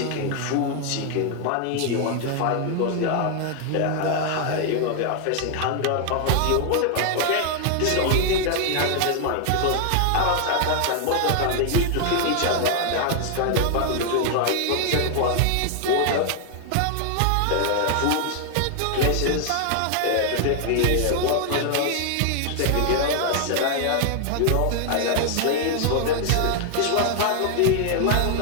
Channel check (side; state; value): both; different; correlation 0.00